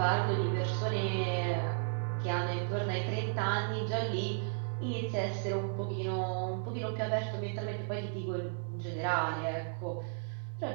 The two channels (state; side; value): silent; left; digital silence